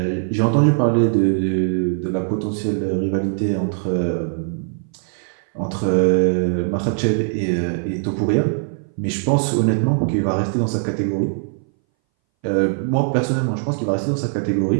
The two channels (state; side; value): silent; left; 61 dB below the other